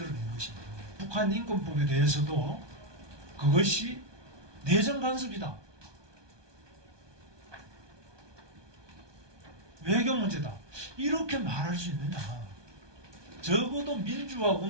것입니다. 북한 인권법에 대해서도 그것이 내정 간섭이다, 외교 문제다, 이렇게 말할 수 있느냐. 적어도 민주화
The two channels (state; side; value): late; left; 1.2 ms